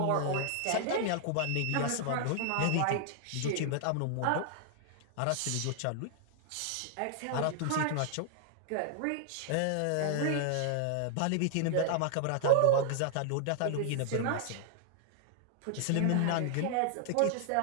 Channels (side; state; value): both; different; correlation -0.01